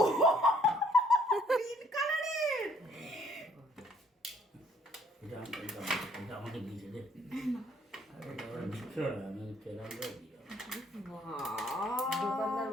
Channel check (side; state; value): both; normal; correlation 0.63